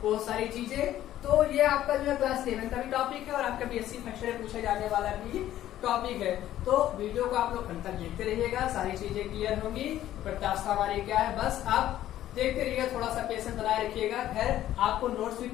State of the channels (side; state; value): right; quieter; 12.9 dB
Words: बहुत सारी चीजें। तो ये आपका जो है क्लास 11 का भी टॉपिक है और आपका बीएससी फर्स्ट ईयर पूछे जाने वाला भी टॉपिक है। तो वीडियो को आप लोग अंत तक देखते रहिएगा, सारी चीजें क्लियर होंगी। प्रत्यास्था हमारी क्या है बस आप देखते रहिएगा, थोड़ा सा पेशेंस बनाए रखिएगा। खैर आपको नोट्स भी